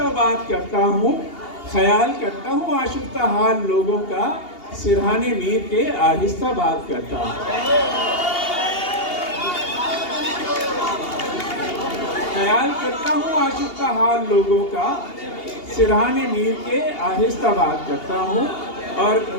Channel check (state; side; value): late; right; 2.8 ms